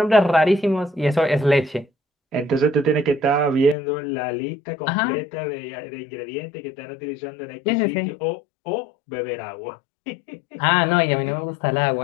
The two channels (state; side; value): drops out; right; at 3.8 s